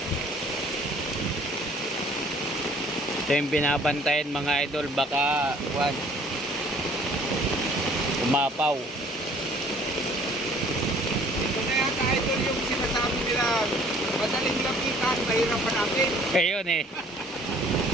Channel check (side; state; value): both; normal; correlation 0.56